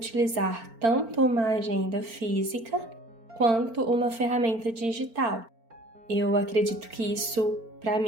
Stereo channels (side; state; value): left; late; 4.4 ms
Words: tanto uma agenda física quanto uma ferramenta digital. Eu acredito que isso, para